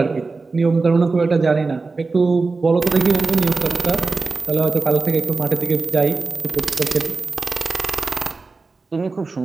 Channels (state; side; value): quieter; left; 3.9 dB